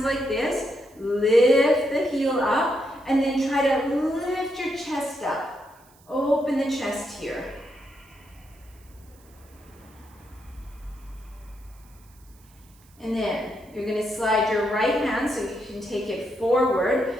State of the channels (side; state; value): right; noise; hiss, 29 dB below the sound